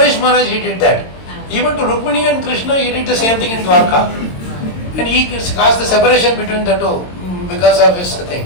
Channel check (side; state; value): right; late; 22 ms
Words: Maharaj, he did that. Even to Rukmini and Krishna, he did the same thing in Dwarka. And he caused the separation between the two because of his thing.